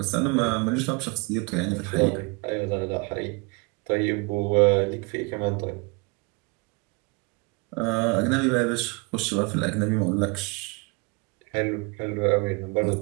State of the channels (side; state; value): left; quieter; 29.0 dB